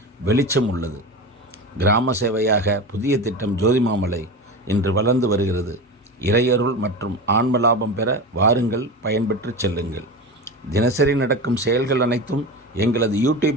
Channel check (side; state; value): both; normal; correlation 0.26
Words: வெளிச்சம் உள்ளது. கிராம சேவையாக புதிய திட்டம் ஜோதிமாமலை இன்று வளர்ந்து வருகிறது. இறையருள் மற்றும் ஆன்ம லாபம் பெற வாருங்கள், பயன்பெற்று செல்லுங்கள். தினசரி நடக்கும் செயல்கள் அனைத்தும் எங்களது